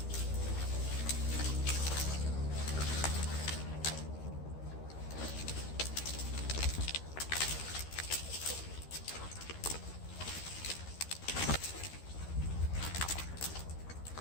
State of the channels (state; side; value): late; right; 13 ms